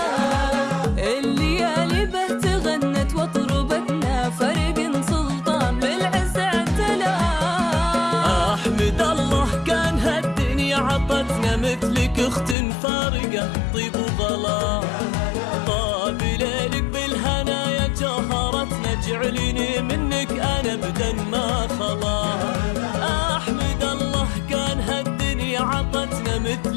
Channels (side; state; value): right; drops out; at 12.6 s